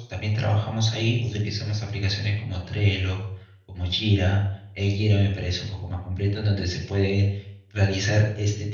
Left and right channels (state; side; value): identical; both; correlation 1.00